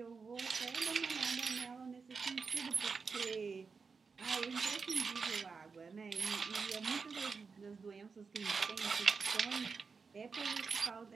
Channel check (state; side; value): quieter; left; 5.0 dB